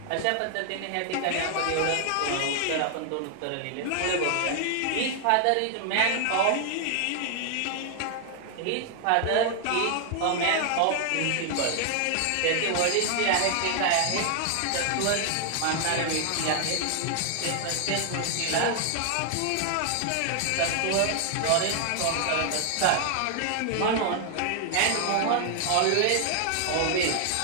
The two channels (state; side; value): different; both; correlation 0.00